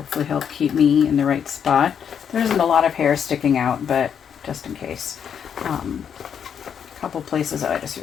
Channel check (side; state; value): right; quieter; 7.9 dB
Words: help keep me in the right spot. There isn't a lot of hair sticking out, but just in case. A couple places that I just